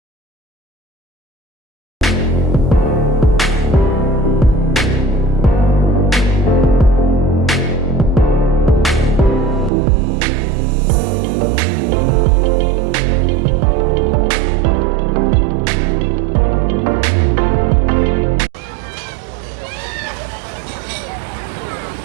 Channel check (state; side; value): drops out; left; at 9.7 s